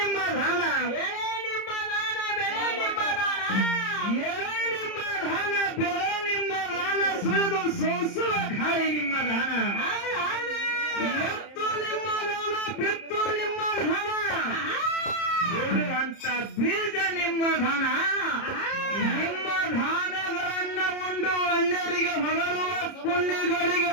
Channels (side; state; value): right; late; 30 ms